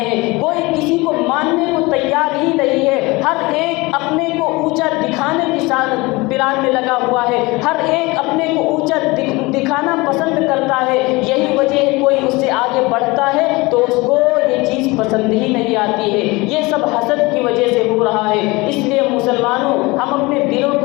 ہیں، کوئی کسی کو ماننے کو تیار ہی نہیں ہے، ہر ایک اپنے کو اونچا دکھانے کی پلان میں لگا ہوا ہے، ہر ایک اپنے کو اونچا دکھانا پسند کرتا ہے۔ یہی وجہ ہے کوئی اس سے آگے بڑھتا ہے تو اس کو یہ چیز پسند ہی نہیں آتی ہے۔ یہ سب حسد کی وجہ سے ہو رہا ہے۔ اس لیے مسلمانوں، ہم اپنے دلوں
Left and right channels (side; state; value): right; quieter; 23.4 dB